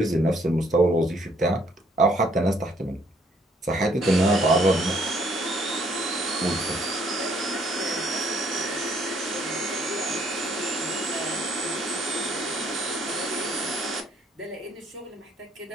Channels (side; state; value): both; normal; correlation 0.66